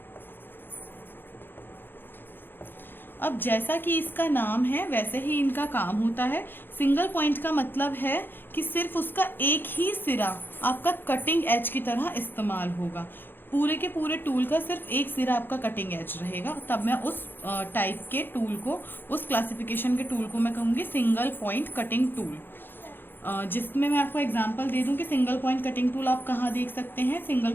अब जैसा कि इसका नाम है वैसे ही इनका काम होता है। सिंगल पॉइंट का मतलब है कि सिर्फ उसका एक ही सिरा आपका कटिंग एज की तरह इस्तेमाल होगा। पूरे के पूरे टूल का सिर्फ एक सिरा आपका कटिंग एज रहेगा। तब मैं उस टाइप के टूल को, उस क्लासिफिकेशन के टूल को मैं कहूँगी सिंगल पॉइंट कटिंग टूल। जिसमें मैं आपको एग्जांपल दे दूं कि सिंगल पॉइंट कटिंग टूल आप कहाँ देख सकते हैं। सिंगल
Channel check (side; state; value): right; late; 0.099 ms